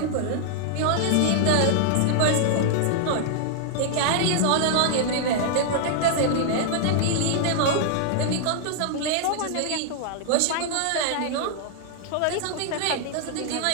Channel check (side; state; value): both; different; correlation -0.01